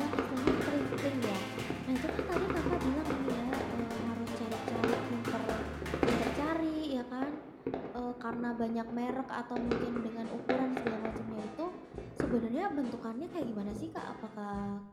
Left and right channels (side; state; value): both; identical; correlation 1.00